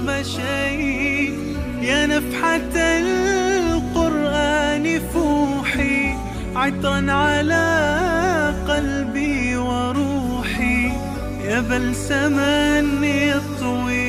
مشيت. يا نفحة القرآن فوحي، عطرا على قلبي وروحي، يا بلسما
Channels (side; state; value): both; identical; correlation 1.00